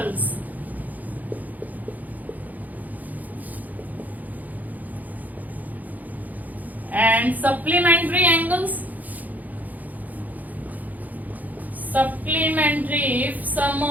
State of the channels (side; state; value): left; late; 0.080 ms